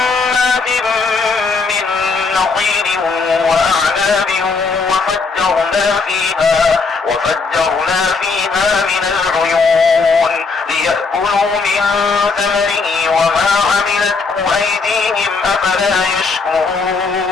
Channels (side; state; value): right; quieter; 4.4 dB